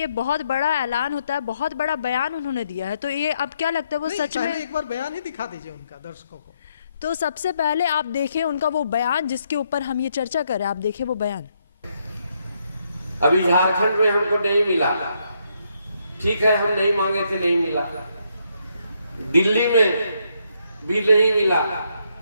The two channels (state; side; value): inverted; both; correlation -0.75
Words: बहुत बड़ा ऐलान होता है, बहुत बड़ा बयान उन्होंने दिया है, तो ये अब क्या लगता है वो सच में? एक बार बयान ही दिखा दीजिए उनका दर्शकों को। तो सबसे पहले आप देखें उनका वो बयान जिसके ऊपर हम ये चर्चा कर रहे हैं। आप देखें वो बयान। अभी झारखंड में हमको नहीं मिला, ठीक है, हम नहीं मांगे थे, नहीं मिला। दिल्ली में भी नहीं मिला,